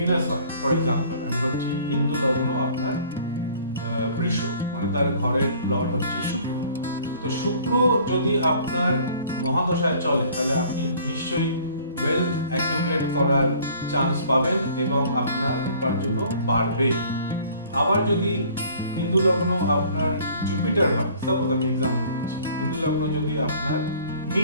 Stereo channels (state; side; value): inverted; both; correlation -0.53